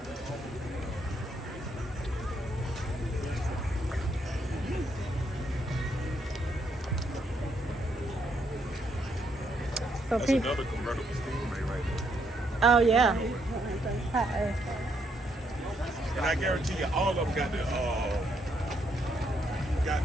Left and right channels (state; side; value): normal; both; correlation 0.74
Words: So That's people. another convertible Stingray right there. Oh yeah. And I guarantee you, all of them got